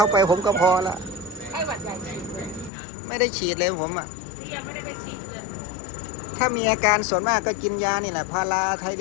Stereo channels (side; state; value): right; drops out; at 2.7 s